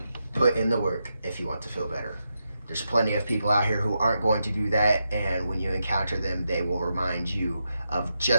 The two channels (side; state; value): both; inverted; correlation -0.86